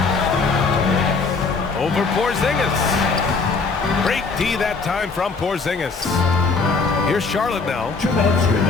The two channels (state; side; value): quieter; right; 4.4 dB